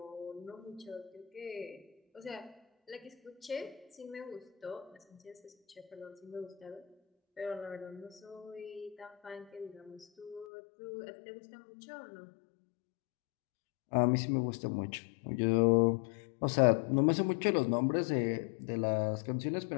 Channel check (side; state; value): right; drops out; at 10.5 s